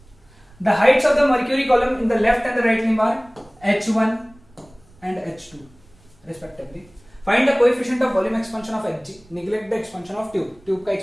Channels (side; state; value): right; noise; rumble, 28 dB below the sound